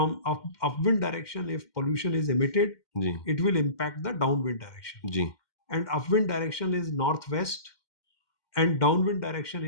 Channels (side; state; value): right; late; 2.1 ms